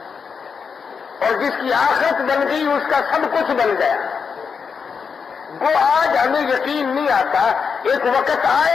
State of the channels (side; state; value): right; quieter; 5.9 dB